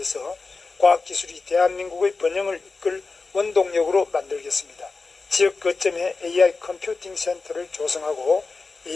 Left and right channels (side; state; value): right; quieter; 4.0 dB